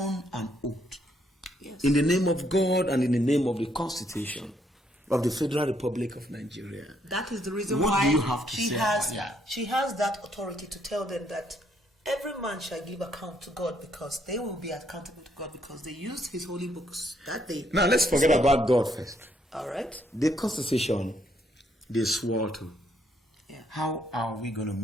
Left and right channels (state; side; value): normal; both; correlation 0.72